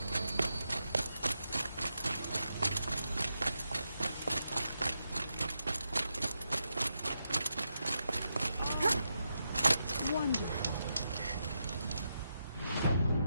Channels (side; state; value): both; inverted; correlation -0.85